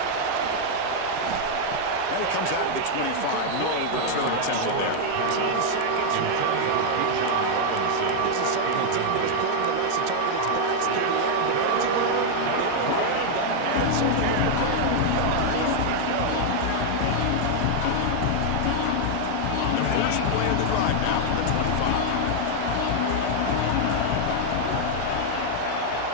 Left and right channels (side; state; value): both; different; correlation 0.00